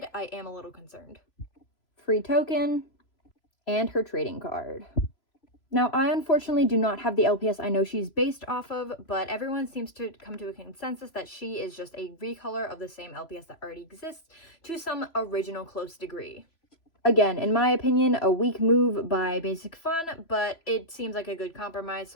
I am a little concerned. Free token, and her trading card. Now, I unfortunately do not have the LPS I know she's based off of, but everyone seems to come to a consensus that she is just a recolor of the same LPS that already exists to some original close degree. Again, in my opinion, a weak move by Basic Fun, but it seems like a good compromise,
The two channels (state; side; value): late; right; 3.0 ms